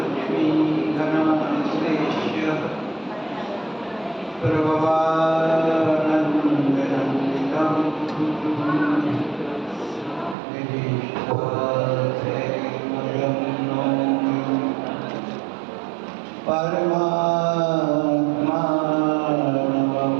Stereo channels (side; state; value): left; drops out; at 10.4 s